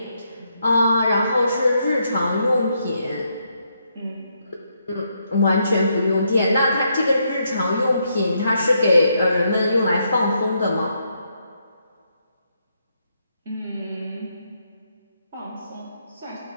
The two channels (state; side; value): inverted; both; correlation -0.78